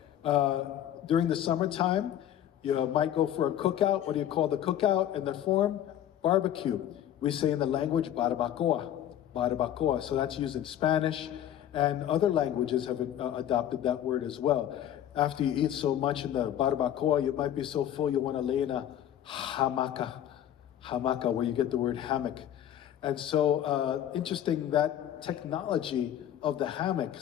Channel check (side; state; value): right; quieter; 11.0 dB